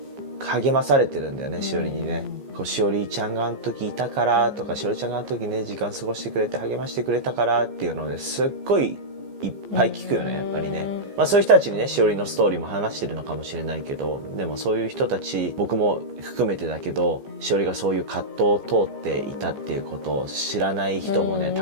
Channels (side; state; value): left; late; 15 ms